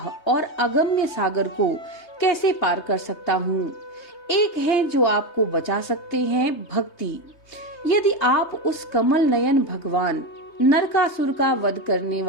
और अगम्य सागर को कैसे पार कर सकता हूँ। एक है जो आपको बचा सकते हैं, भक्ति। यदि आप उस कमल नयन भगवान नरकासुर का वध करने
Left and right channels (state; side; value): late; right; 3.2 ms